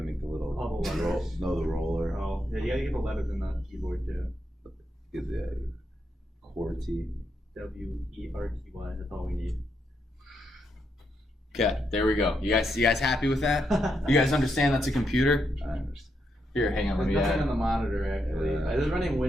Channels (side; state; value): both; normal; correlation 0.80